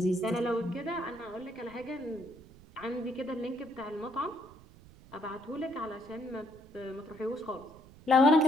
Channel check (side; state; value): right; noise; rumble, 22 dB below the sound